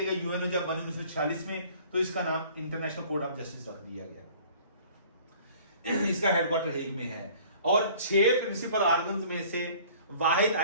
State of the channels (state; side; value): inverted; both; correlation -0.51